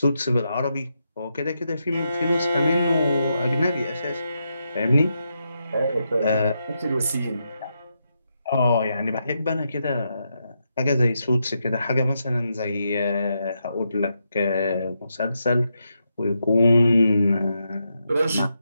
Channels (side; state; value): both; inverted; correlation -0.84